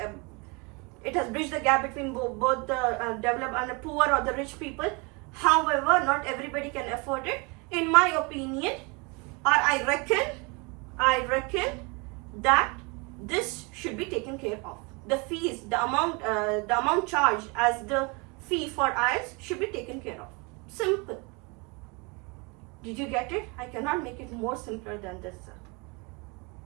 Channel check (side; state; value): left; quieter; 29.5 dB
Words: it has bridged the gap between both the developed and the poor or the rich people. However, not everybody can afford it. In my opinion, or I reckon that this should be taken care of. The fees, the amount charged as the fee for IELTS should be taken care of. Simple. Did you get it? I cannot make it more simpler than this, sir.